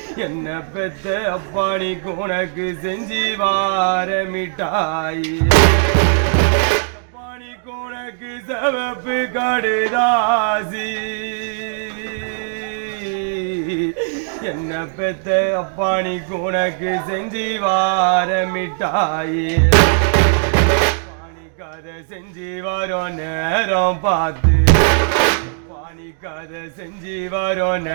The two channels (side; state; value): left; silent; 67 dB below the other